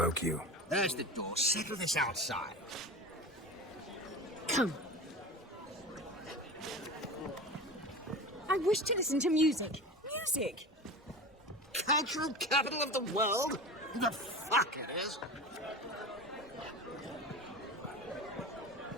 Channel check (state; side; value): normal; both; correlation 0.30